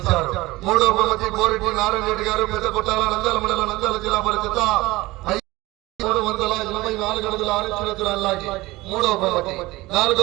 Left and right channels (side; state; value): left; quieter; 19.8 dB